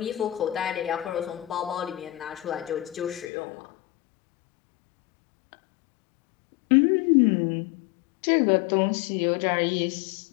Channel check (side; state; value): right; drops out; at 3.2 s